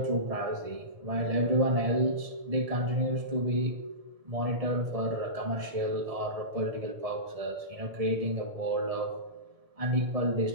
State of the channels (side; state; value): left; late; 1.7 ms